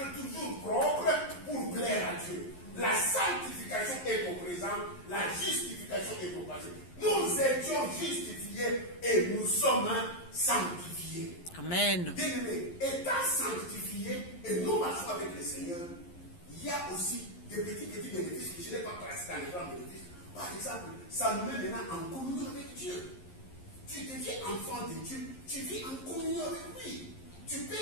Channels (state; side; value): late; right; 11 ms